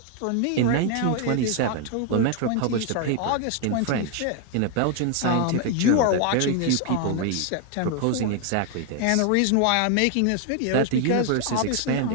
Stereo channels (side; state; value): both; different; correlation 0.00